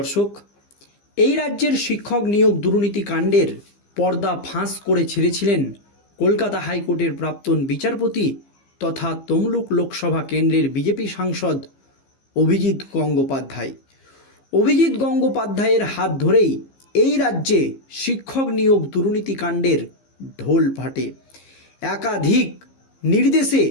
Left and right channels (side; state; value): right; late; 15 ms